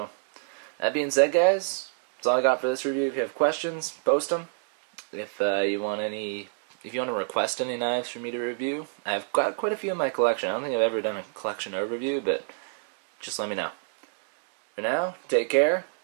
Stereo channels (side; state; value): left; silent; digital silence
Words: that being said, guys, that's all I got for this review. If you have questions, post them. If you want to request any knives for me to review, I've got quite a few in my collection. I don't think I've ever done a collection overview, but just let me know. For now, take care.